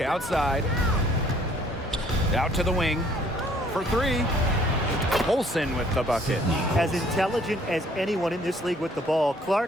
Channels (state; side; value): normal; both; correlation 0.60